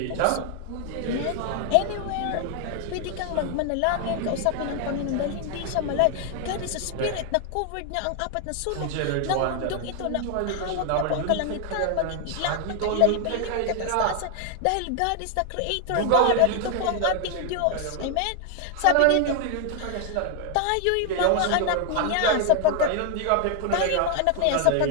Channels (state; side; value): different; both; correlation 0.00